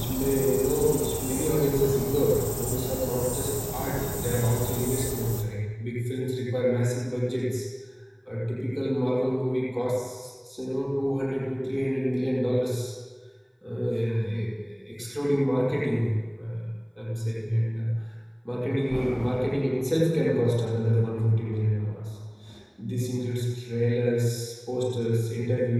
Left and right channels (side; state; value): both; identical; correlation 1.00